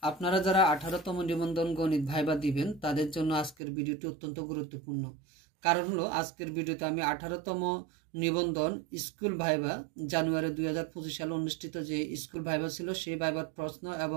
আপনারা যারা 18তম নিবন্ধন গণিত ভাইবা দিবেন তাদের জন্য আজকের ভিডিওটি অত্যন্ত গুরুত্বপূর্ণ। কারণ হলো আজকের ভিডিওতে আমি 18তম নিবন্ধন স্কুল ভাইবা জানুয়ারি 2025 সালে অনুষ্ঠিত যে স্কুল ভাইবা ছিল সেই ভাইবার প্রশ্ন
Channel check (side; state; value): left; drops out; at 3.6 s